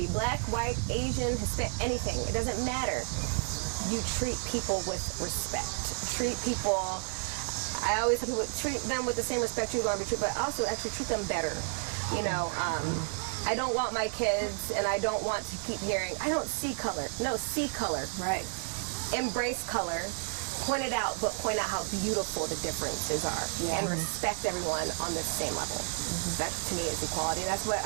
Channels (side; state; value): left; silent; 57 dB below the other